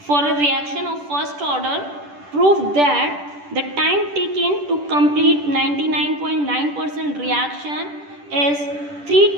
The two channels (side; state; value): left; late; 10 ms